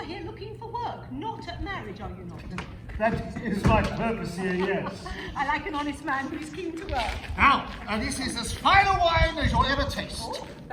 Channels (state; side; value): identical; both; correlation 1.00